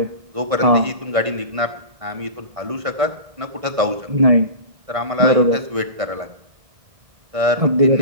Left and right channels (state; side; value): late; left; 1.6 ms